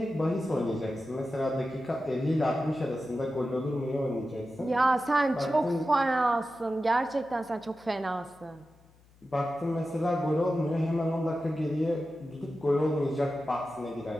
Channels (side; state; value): left; noise; hum, 29 dB below the sound